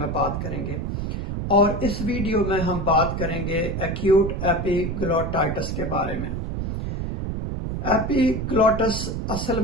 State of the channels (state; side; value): noise; right; rumble, 3 dB below the sound